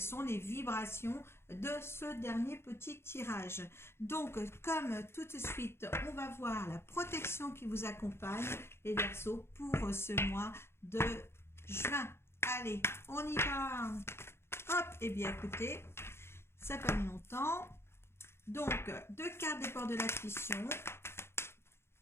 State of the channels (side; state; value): right; late; 0.12 ms